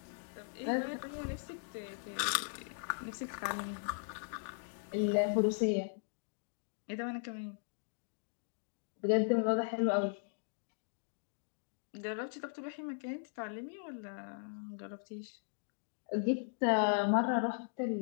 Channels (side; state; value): right; silent; digital silence